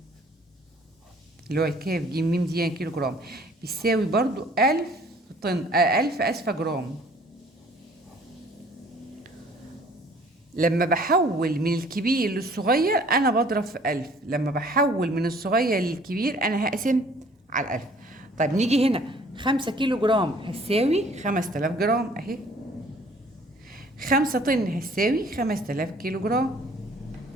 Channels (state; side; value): normal; both; correlation 0.55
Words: اللي هو الكاف جيم ميم دي يعني كيلو جرام بيساوي برضو 1000 طن 1000 أسفة جرام. لما بحول من الكبير للصغير أنا بضرب في 1000. لما بحول من الصغير للكبير أنا هقسم على 1000. طيب نيجي هنا 5 كيلو جرام هتساوي 5000 جرام أهي. 5 طن هتساوي 5000 كيلو جرام.